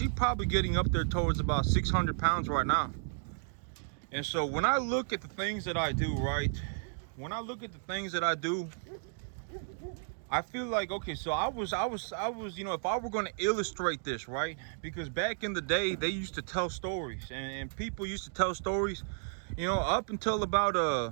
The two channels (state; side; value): silent; left; digital silence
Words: probably getting up there towards about 600 pounds right now. And so when I look at the things that I do, right, I feel like, okay, so I was, you know, if I were going to illustrate this, right, because back in the day they used to tell stories, and people used to tell stories, you know, up until about